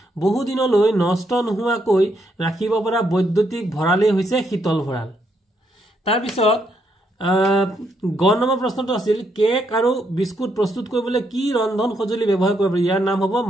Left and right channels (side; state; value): both; normal; correlation 0.76